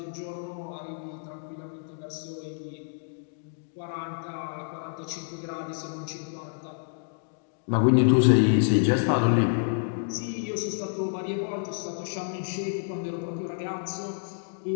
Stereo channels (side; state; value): right; silent; digital silence